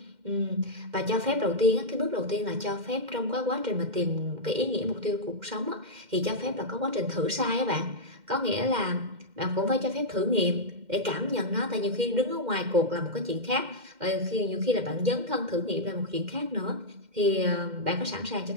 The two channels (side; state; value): left; late; 2.1 ms